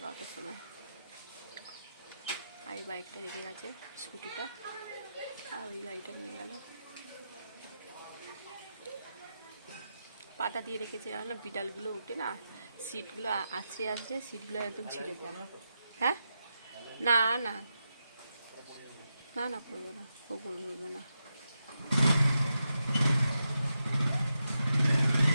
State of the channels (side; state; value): both; inverted; correlation -0.88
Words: সময়। আর এই বাইকটা রেখে গেছে, স্কুটিটা, আর ওই গাড়িটা নিয়ে গেল। পাটা দিয়ে রেখেছে জানো না, বিড়ালগুলো উঠে না, সিটগুলো আছড়ে আছড়ে সিটগুলো একদম ছিঁড়ে দেয়। হ্যাঁ, না না না না, পড়বে না, ও পড়বে না।